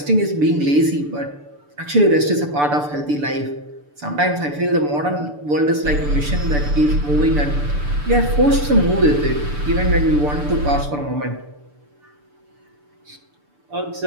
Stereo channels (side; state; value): left; late; 6.8 ms